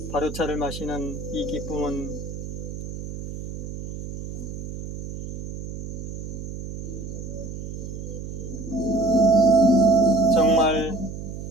발효차를 마시는 이 기쁨은 정말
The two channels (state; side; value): noise; right; hum, 7 dB below the sound